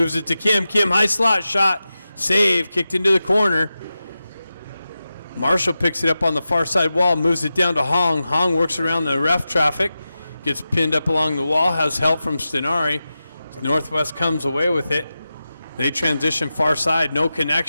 it to Kim. Kim, high slot shot. Save. Kicked into the corner. Marshall picks it up on the far side wall. Moves it down to Hong. Hong works around the ref traffic. Gets pinned up along the wall. Has help from Stenari. Northwest comes away with it. They transition far side, no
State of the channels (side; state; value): both; inverted; correlation -0.93